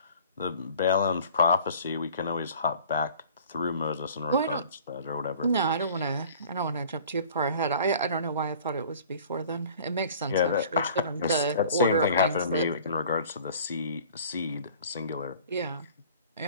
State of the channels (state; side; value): inverted; both; correlation -0.48